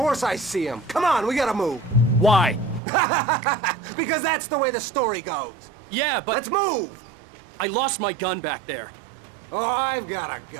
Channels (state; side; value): drops out; left; at 2.8 s